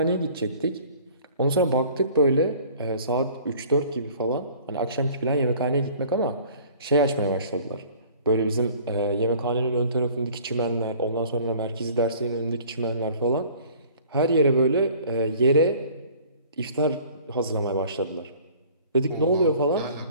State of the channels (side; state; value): both; inverted; correlation -0.50